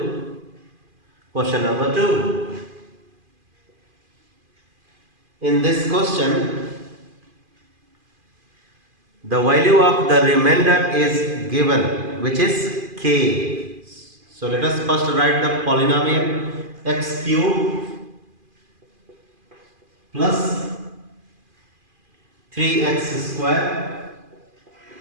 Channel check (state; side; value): late; left; 2.5 ms